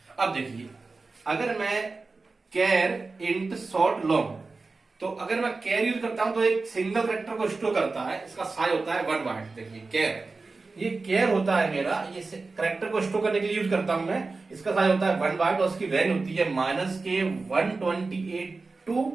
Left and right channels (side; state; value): left; quieter; 3.8 dB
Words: अब देखिए, अगर मैं कैर, इंट, शॉर्ट, लॉन्ग, तो अगर मैं कैर यूज करता हूं तो एक सिंगल कैरेक्टर को स्टोर करता है, इसका साइज होता है 1 बाइट। देखिए कैर, ये कैर होता है मेरा, ये कैरेक्टर को स्टोर करने के लिए यूज करता हूं मैं, इसका साइज होता है 1 बाइट, और उसकी रेंज होती है -128